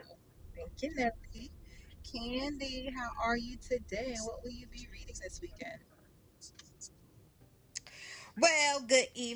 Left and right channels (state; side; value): identical; both; correlation 1.00